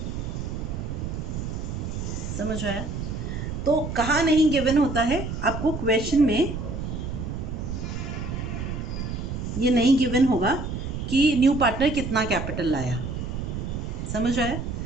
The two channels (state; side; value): noise; right; rumble, 5 dB below the sound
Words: समझ आया? तो कहाँ नहीं गिवन होता है आपको? क्वेश्चन में ये नहीं गिवन होगा कि न्यू पार्टनर कितना कैपिटल लाया। समझ आया?